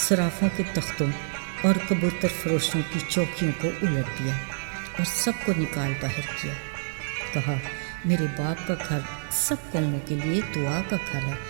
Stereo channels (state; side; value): silent; left; digital silence